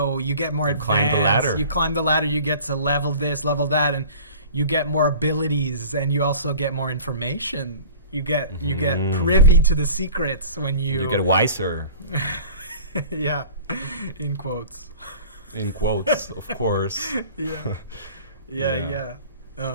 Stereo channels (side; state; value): both; inverted; correlation -0.41